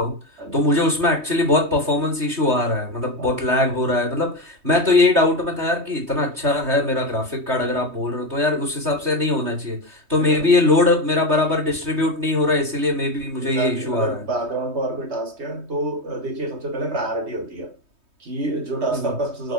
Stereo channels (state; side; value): late; left; 3.2 ms